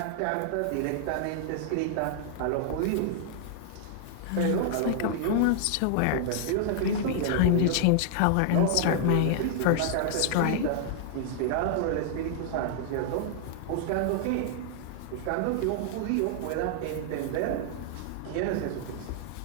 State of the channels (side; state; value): both; different; correlation -0.01